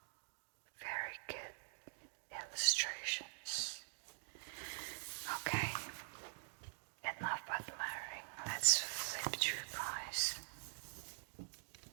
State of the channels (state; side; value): silent; left; digital silence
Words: Very good illustrations. Okay, enough admiring. Let's flip through, guys.